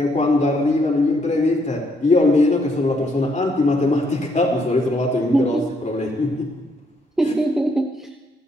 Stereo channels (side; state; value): both; normal; correlation 0.72